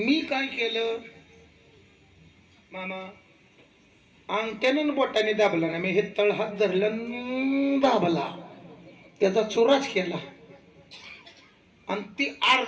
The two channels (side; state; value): both; identical; correlation 1.00